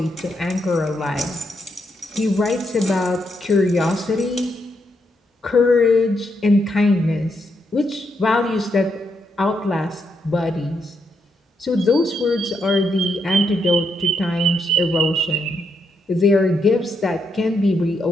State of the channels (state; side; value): normal; both; correlation 0.79